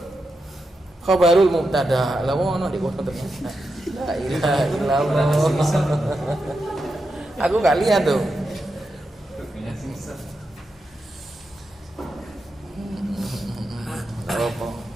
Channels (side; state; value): both; normal; correlation 0.87